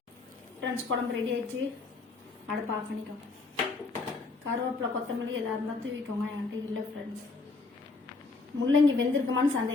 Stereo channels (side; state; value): right; quieter; 3.8 dB